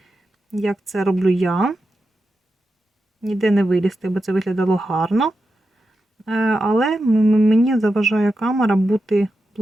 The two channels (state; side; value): normal; both; correlation 0.89